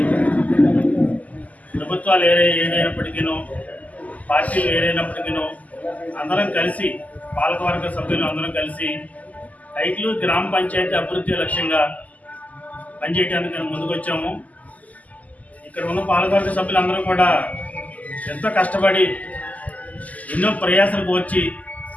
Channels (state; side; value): late; right; 0.076 ms